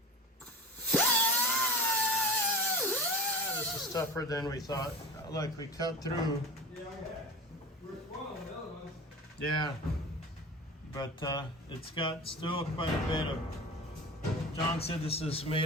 This is tougher than we thought. Look, we cut through. Yeah, we're spoiling the other ones. Yeah, but it's got still quite a bit of. John said this is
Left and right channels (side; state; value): both; normal; correlation 0.33